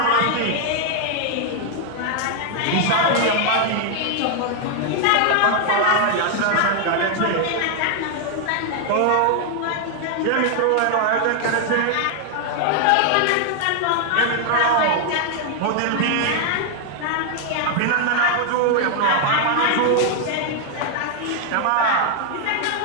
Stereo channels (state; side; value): different; both; correlation 0.00